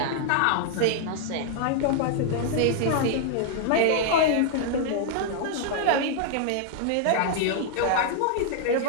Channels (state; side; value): different; both; correlation -0.01